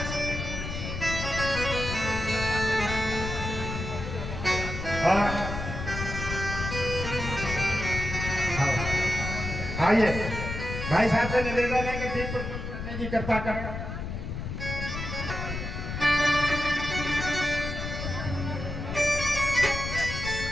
आइए भाई साहब से निवेदन है कि दीप प्रज्वलित करने की कृपा करें।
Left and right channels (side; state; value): left; noise; rumble, 5 dB below the sound